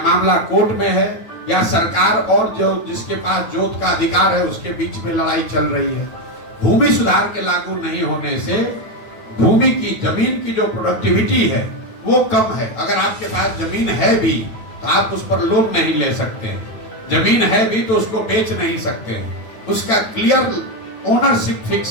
मामला कोर्ट में है, या सरकार और जो जिसके पास जोत का अधिकार है उसके बीच में लड़ाई चल रही है। भूमि सुधार के लागू नहीं होने से भूमि की, जमीन की जो प्रोडक्टिविटी है वो कम है। अगर आपके पास जमीन है भी तो आप उस पर लोन नहीं ले सकते हैं, जमीन है भी तो उसको बेच नहीं सकते हैं, उसका क्लियर ओनरशिप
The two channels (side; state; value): right; late; 9.0 ms